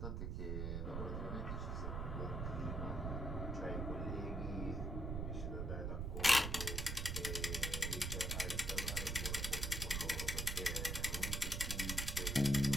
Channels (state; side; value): noise; right; rumble, 1 dB below the sound